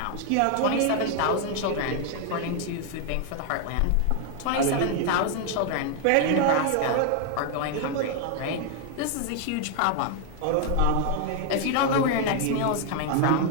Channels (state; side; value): different; both; correlation 0.00